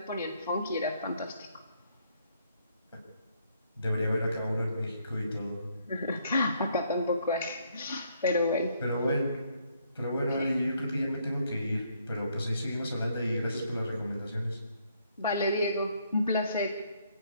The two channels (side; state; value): both; inverted; correlation -0.70